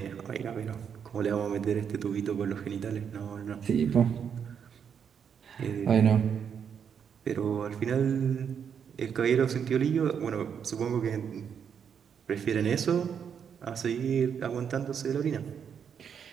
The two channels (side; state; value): left; quieter; 7.5 dB